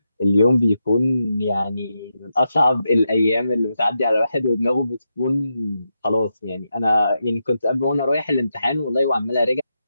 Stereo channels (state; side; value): inverted; both; correlation -0.86